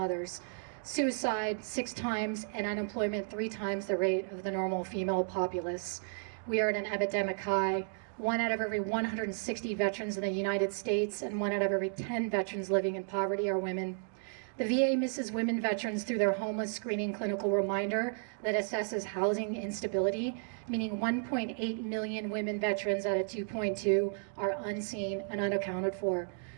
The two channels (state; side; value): silent; left; 56 dB below the other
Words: suicide 6 times, and unemployment 3 times the rate of the normal female populace. We are at an epidemic high. 1 out of every 160 veterans in the United States and 1 out of every 10 veterans living in poverty are women. The VA misses women veterans through their homeless screening clinical reminder that assesses housing instability, meaning 1.8 million women veterans out of 2.2 are unseen and unaccounted for.